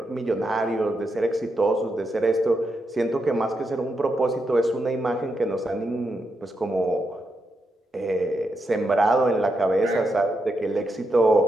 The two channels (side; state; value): both; normal; correlation 0.84